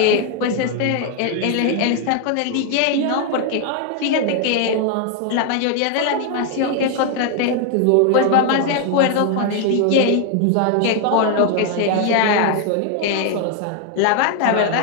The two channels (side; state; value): both; different; correlation 0.00